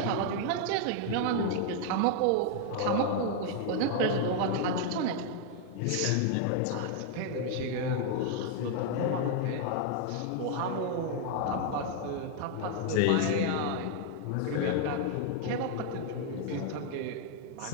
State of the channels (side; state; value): both; different; correlation 0.00